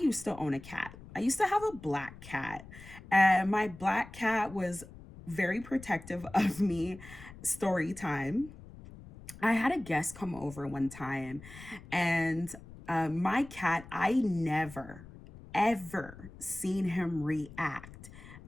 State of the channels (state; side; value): noise; left; rumble, 17 dB below the sound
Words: to own a cat. I used to have a black cat, and my black cat was very protective of me. Story time. I had a guest come over one time, and my cat, I never, ever seen him react